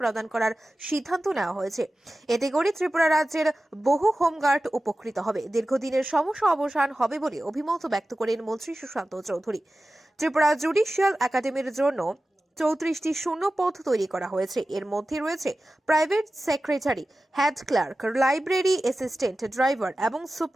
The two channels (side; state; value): both; normal; correlation 0.95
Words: করার সিদ্ধান্ত নেওয়া হয়েছে। এতে করে ত্রিপুরা রাজ্যের বহু হোমগার্ড উপকৃত হবে, দীর্ঘদিনের সমস্যা অবসান হবে বলে অভিমত ব্যক্ত করেন মন্ত্রী সুশান্ত চৌধুরী। ত্রিপুরা জুডিশিয়াল একাডেমির জন্য ৩৪টি শূন্য পদ তৈরি করা হয়েছে। এর মধ্যে রয়েছে private secretary, head clerk, library assistant, driver এবং